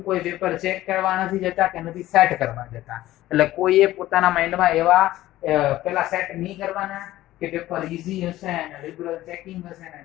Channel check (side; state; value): right; quieter; 15.4 dB